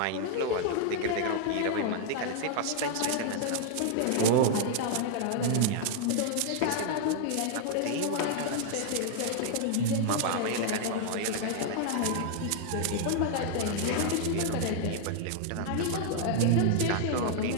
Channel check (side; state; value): both; different; correlation 0.00